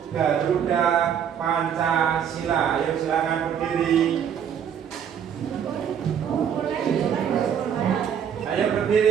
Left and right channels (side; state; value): left; quieter; 8.4 dB